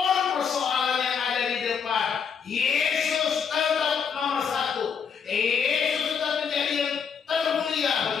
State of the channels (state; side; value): quieter; right; 6.7 dB